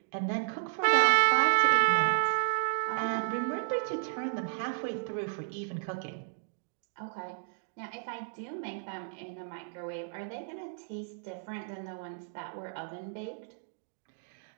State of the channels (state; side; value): silent; left; digital silence